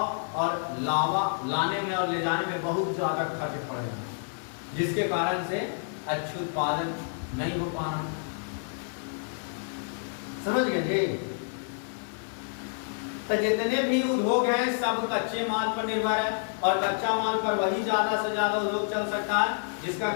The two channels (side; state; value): right; silent; digital silence